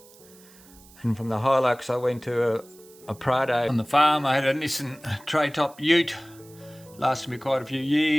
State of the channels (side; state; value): right; noise; hiss, 24 dB below the sound